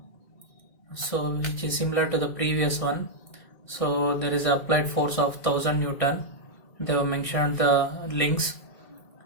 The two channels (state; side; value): late; right; 1.6 ms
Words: So which is similar to the previous one. So there is a applied force of 1000 Newton. They have mentioned the links.